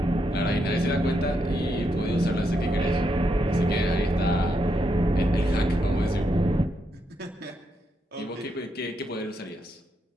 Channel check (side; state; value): both; normal; correlation 0.80